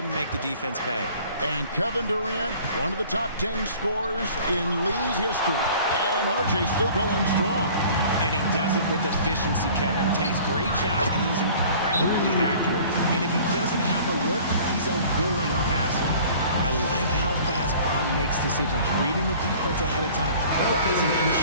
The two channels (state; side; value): inverted; both; correlation -0.48